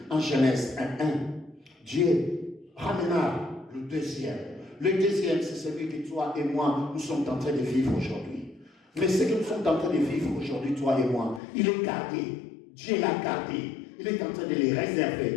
en Genèse 1.1. Dieu ramena le deuxième. Le deuxième, c'est celui que toi et moi, nous sommes en train de vivre aujourd'hui. Mais ce que nous sommes en train de vivre aujourd'hui, toi et moi, il est gardé. Dieu l'a gardé. Il est en train de les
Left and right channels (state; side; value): drops out; right; at 11.4 s